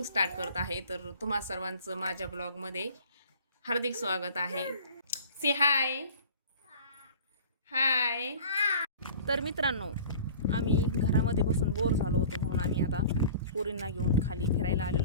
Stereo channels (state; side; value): inverted; both; correlation -0.45